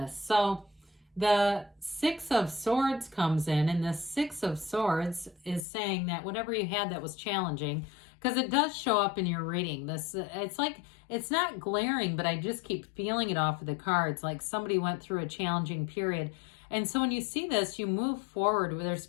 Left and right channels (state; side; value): drops out; right; at 5.7 s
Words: So the Six of Swords comes in, and the Six of Swords is saying that whatever you had that was challenging, because it does show up in your reading. It's not glaring, but I just keep feeling it off of the cards, like somebody went through a challenging period. And so when you see this, you move forward where there's